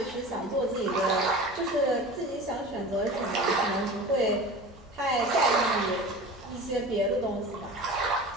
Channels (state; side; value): normal; both; correlation 0.35